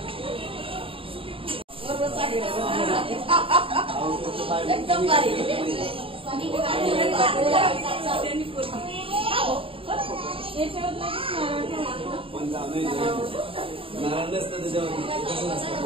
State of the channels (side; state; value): left; late; 0.26 ms